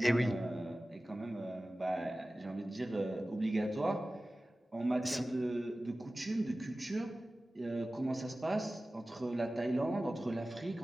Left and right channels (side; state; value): both; normal; correlation 0.96